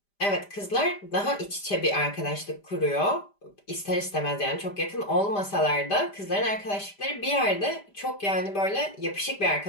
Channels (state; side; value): late; right; 5.0 ms